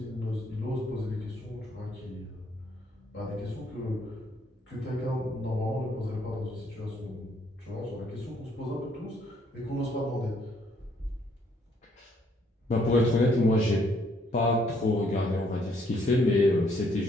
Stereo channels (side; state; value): both; normal; correlation 0.68